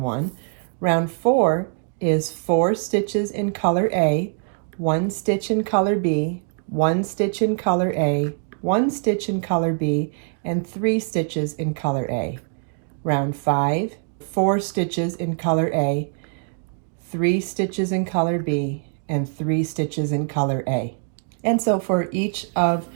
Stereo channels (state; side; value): silent; left; 59 dB below the other